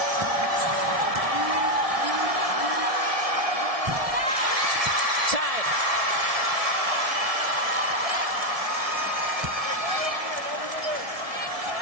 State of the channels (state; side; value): late; left; 1.7 ms